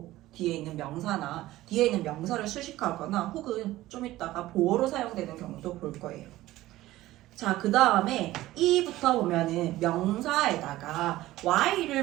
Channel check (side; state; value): left; quieter; 16.3 dB